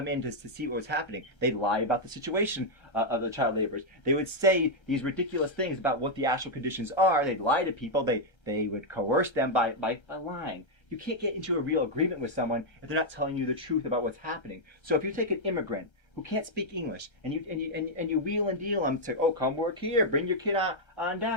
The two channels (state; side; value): late; right; 1.3 ms